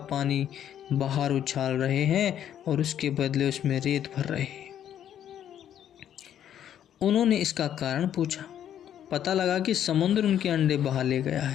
पानी बाहर उछाल रहे हैं और उसके बदले उसमें रेत भर रहे हैं। उन्होंने इसका कारण पूछा। पता लगा कि समुद्र उनके अंडे बहा ले गया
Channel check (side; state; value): right; quieter; 10.2 dB